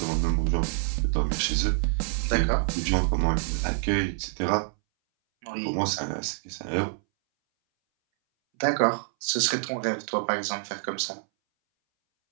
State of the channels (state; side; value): silent; left; 60 dB below the other